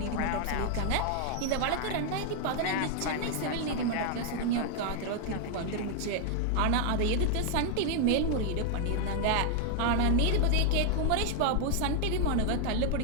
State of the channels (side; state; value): both; different; correlation 0.00